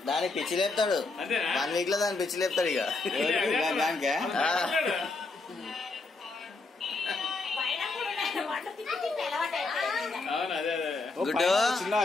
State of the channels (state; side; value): quieter; right; 3.6 dB